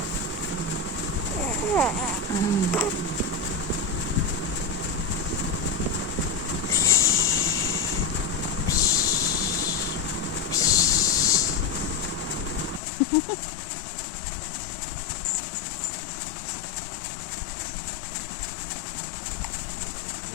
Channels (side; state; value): right; drops out; at 12.8 s